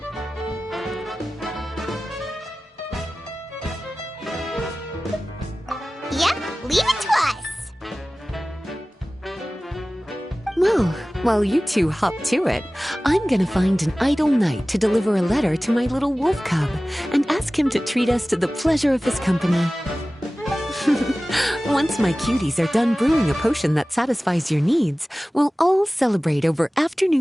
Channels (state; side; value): normal; both; correlation 0.97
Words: Yep, leave it to us. Well, while you two hop to it, I'm gonna find an idle knight to deliver a letter to my little wolf cub and ask him to treat us to the pleasure of his company. Once my cuties are done brewing a potion that satisfies your needs, we'll all celebrate over